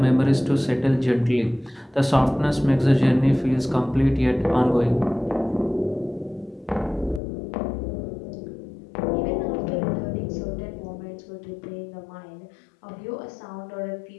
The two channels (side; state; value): right; drops out; at 7.2 s